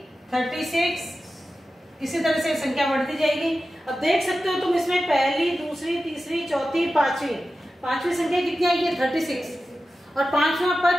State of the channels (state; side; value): normal; both; correlation 0.93